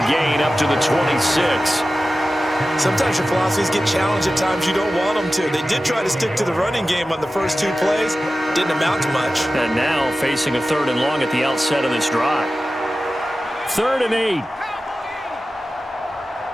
gain up to the 26. Sometimes your philosophies get challenged at times you don't want them to. They did try to stick to the running game on the first 2 plays. Didn't amount to much. And now facing a 3rd and long at the outset of this drive. 3rd and 8.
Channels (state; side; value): normal; both; correlation 0.94